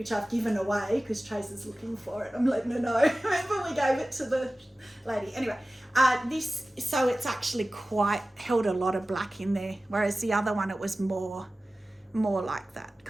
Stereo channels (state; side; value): normal; both; correlation 0.96